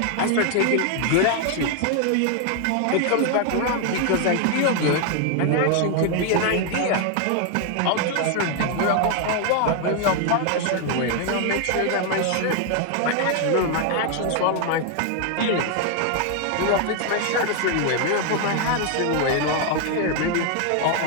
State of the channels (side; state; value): both; different; correlation 0.01